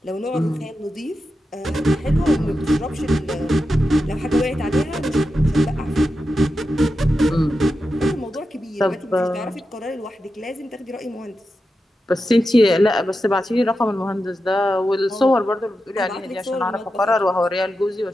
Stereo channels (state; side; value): normal; both; correlation 0.90